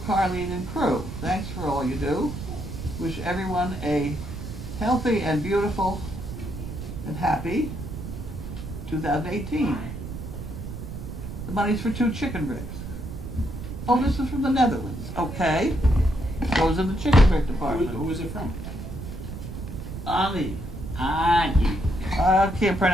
and crew. Thanks for all you do. Wish everyone a healthy and beautiful and happy 2018. The money's for 2 chicken bricks. Oh, this is from the Netherlands. Okay. Goes in the chicken brick department. Who was it from? Ani. Ani. I can't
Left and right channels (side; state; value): right; noise; rumble, 8 dB below the sound